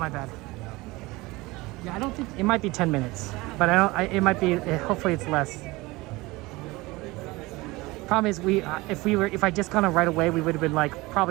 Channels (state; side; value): quieter; left; 21.8 dB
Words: bad. Yeah, I don't think it might be 10 minutes, but it might be. Hopefully, it's less. Problem is, if I just gone on right away, we would have been like